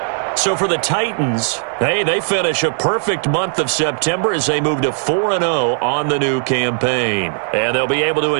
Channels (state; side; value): silent; left; 62 dB below the other